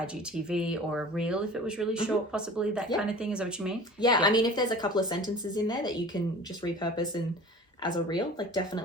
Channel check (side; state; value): both; normal; correlation 0.41